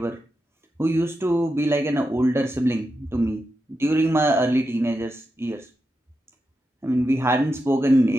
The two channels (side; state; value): both; normal; correlation 0.88